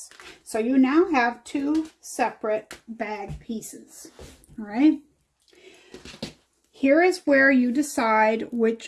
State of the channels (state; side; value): identical; both; correlation 1.00